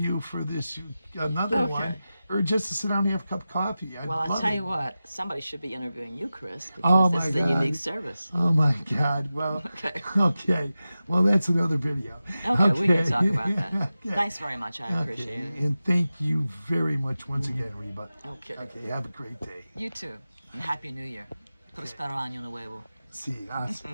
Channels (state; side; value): inverted; both; correlation -0.94